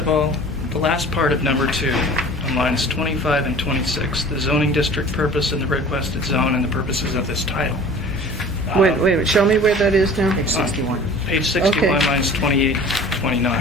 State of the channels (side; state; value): both; normal; correlation 0.44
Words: all, the last part of number 2, on lines 25 and 26, the zoning district purpose and the requested zone and the purposes of this title. Wait a minute, show me where that is now. Page 61. Page 61, Okay. lines 28,